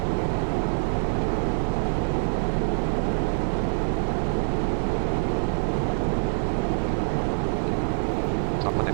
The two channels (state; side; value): silent; left; digital silence